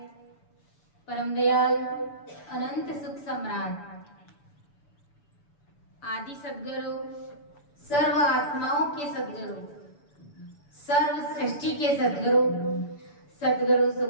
परम दयाल अनंत सुख सम्राट आदि सद्गुरु सर्व आत्माओं के सद्गुरु सर्व सृष्टि के सद्गुरु सतगुरु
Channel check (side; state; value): right; late; 6.9 ms